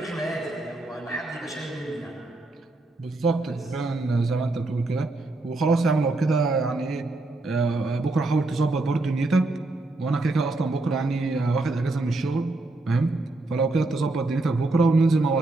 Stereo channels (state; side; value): quieter; left; 3.0 dB